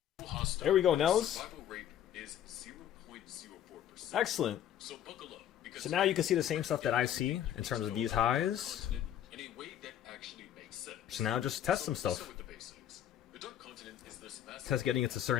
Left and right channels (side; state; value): right; quieter; 10.6 dB